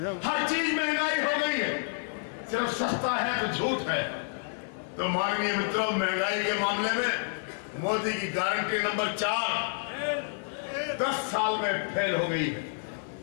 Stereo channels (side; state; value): right; silent; 55 dB below the other